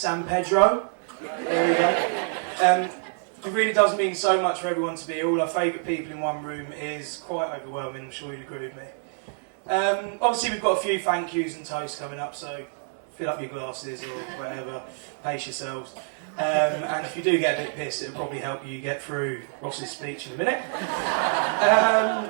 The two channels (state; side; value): silent; left; digital silence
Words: Pedro. There we go. It really does mean so much for everyone to be here. All our favourite people in one room is quite overwhelming, I'm sure you'd agree with me. Obviously we've got a few thank yous and toasts coming up, so fill up your glasses or whatever, pace yourselves. And if you do get a bit pissed, it'll probably help you get through Ross's speech in a minute.